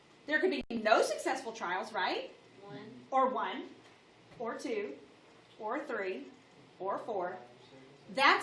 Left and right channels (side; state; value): both; identical; correlation 1.00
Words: There could be no successful trials, right? 1. Or 1, or 2, or 3, or 4.